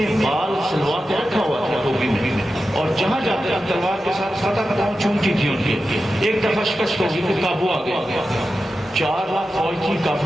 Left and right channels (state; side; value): normal; both; correlation 0.92